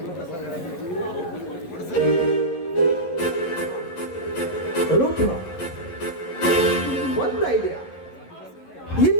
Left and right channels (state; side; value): late; right; 11 ms